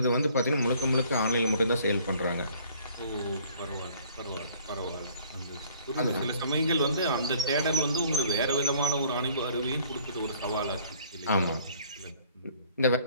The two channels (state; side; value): inverted; both; correlation -0.56